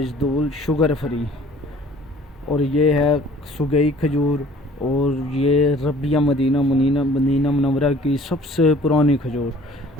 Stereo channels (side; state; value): both; normal; correlation 0.52